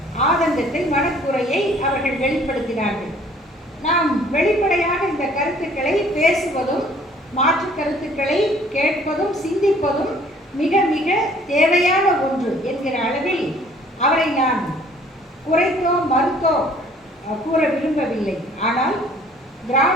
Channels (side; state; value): both; normal; correlation 0.56